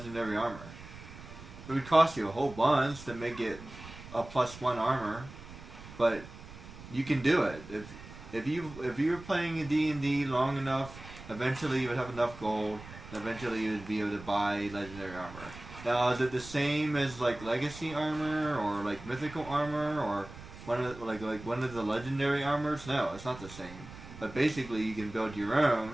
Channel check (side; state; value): right; noise; rumble, 15 dB below the sound